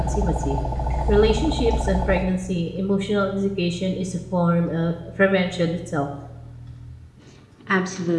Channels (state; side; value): identical; both; correlation 1.00